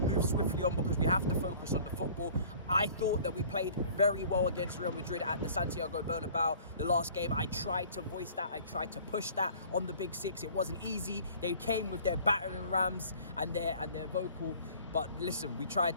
swiftly on because we have to focus on the football. I thought that we played very well against Real Madrid at the Santiago Bernabeu the last game. I tried to voice that, I tried to push that on the big six. It wasn't easy. They came with their battering rams and their vocal. But listen, we tried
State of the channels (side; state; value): both; inverted; correlation -0.49